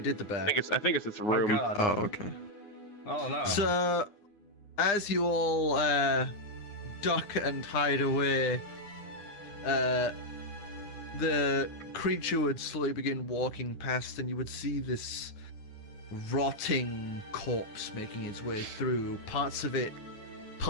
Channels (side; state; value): right; late; 9.7 ms